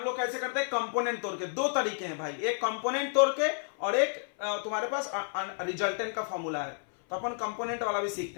लोग कैसे करते हैं, कंपोनेंट तोड़ के। दो तरीके हैं भाई, एक कंपोनेंट तोड़ के और एक तुम्हारे पास रिजल्टेंट का फॉर्मूला है, तो अपन कंपोनेंट वाला भी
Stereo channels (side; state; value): right; silent; 57 dB below the other